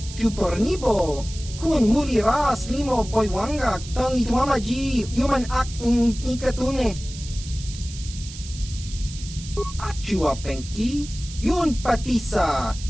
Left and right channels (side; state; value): right; noise; hiss, 14 dB below the sound